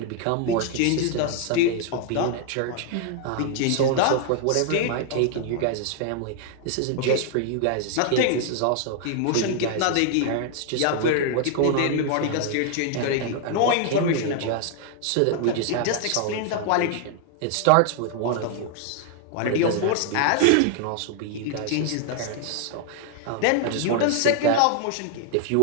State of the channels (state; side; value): different; both; correlation 0.00